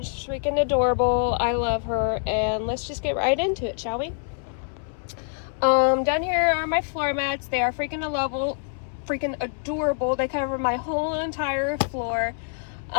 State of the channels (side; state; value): right; silent; 61 dB below the other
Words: she's freaking adorable. I love her, and let's just get right into it, shall we? Down here are my floor mats. They are freaking adorable. They cover my whole entire floor.